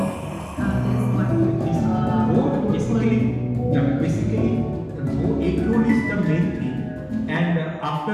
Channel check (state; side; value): identical; both; correlation 1.00